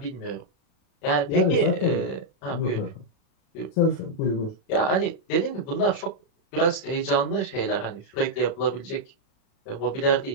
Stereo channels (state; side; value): late; right; 35 ms